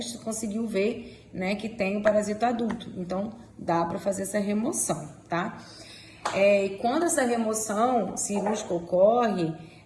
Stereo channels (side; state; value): both; identical; correlation 1.00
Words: conseguiu ver, né, que tem o parasito adulto, então dá para fazer essa remoção, tá? E quando essa remoção cirúrgica ocorre,